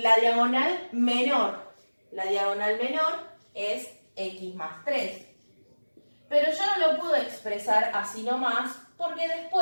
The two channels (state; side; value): inverted; both; correlation -1.00